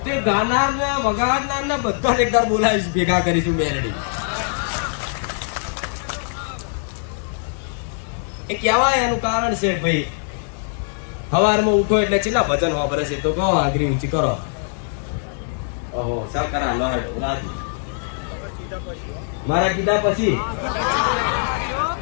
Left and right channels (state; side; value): silent; right; 63 dB below the other